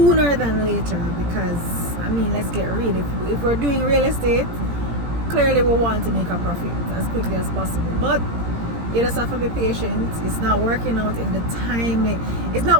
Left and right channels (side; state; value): left; late; 17 ms